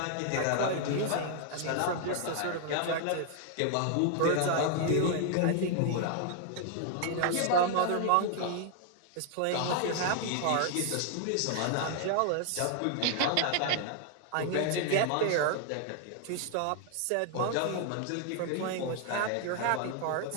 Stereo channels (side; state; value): both; different; correlation 0.00